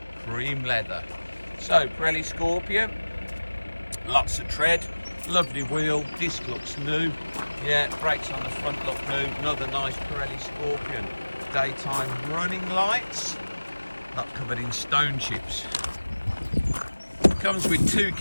cream leather. So Pirelli Scorpion, lots of tread, lovely wheel, disc looks new. Yeah, brakes on the front look new. Another nice Pirelli Scorpion. Daytime running lights, not covered in stone chips. Comes with 2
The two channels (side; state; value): both; inverted; correlation -1.00